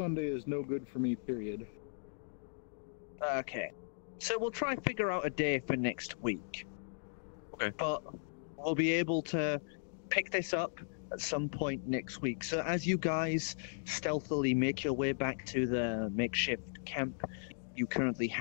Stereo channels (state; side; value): silent; right; digital silence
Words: is no good for me, period. Okay. So we'll try and figure out a day for next week. Okay. But we'll be able to pick this up at some point next week. So as you guys stealthily make your way back to the makeshift camp you currently